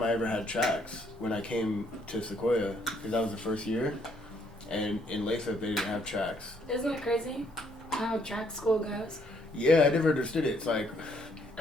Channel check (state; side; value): normal; both; correlation 0.69